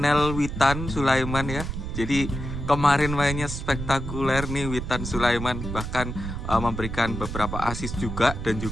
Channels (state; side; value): noise; right; rumble, 6 dB below the sound